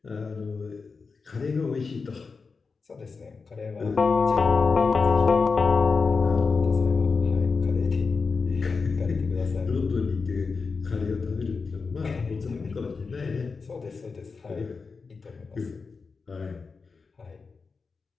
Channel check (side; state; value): right; quieter; 4.7 dB